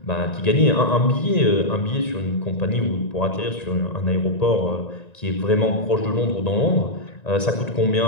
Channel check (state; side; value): late; right; 1.9 ms